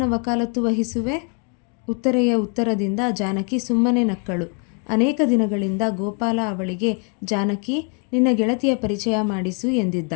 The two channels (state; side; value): quieter; right; 36.3 dB